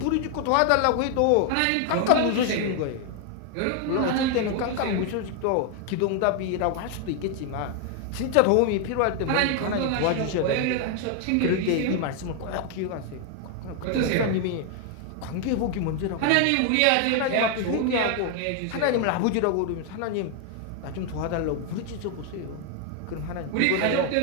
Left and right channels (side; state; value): both; different; correlation 0.00